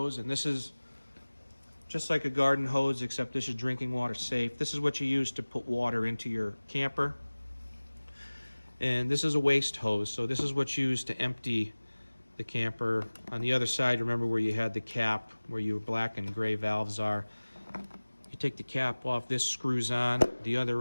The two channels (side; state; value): both; inverted; correlation -1.00